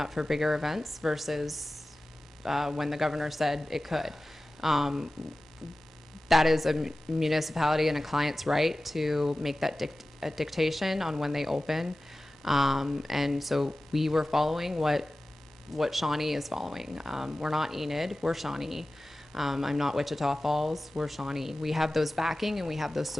for bigger events, versus when the governor said it could. That is a municipality and a client's right to make that dictation on when they open. And so we were following what Shawnee is following. We're not Enid, we're Shawnee. I'm not Wichita Falls, we're Shawnee. We have those backing and we have those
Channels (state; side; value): normal; both; correlation 0.96